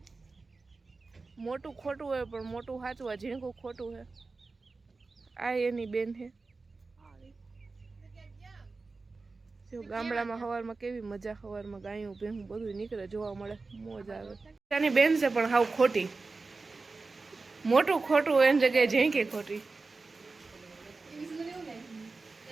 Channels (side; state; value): left; quieter; 3.9 dB